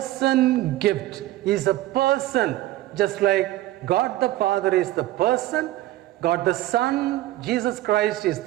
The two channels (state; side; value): quieter; left; 15.8 dB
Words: gift. He is a person, just like God the Father is the person, God the Son, Jesus Christ is